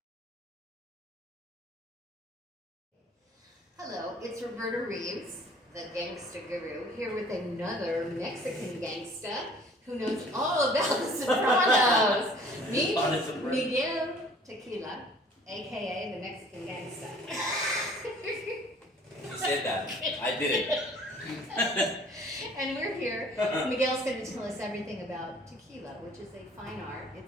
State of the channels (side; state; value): both; normal; correlation 0.53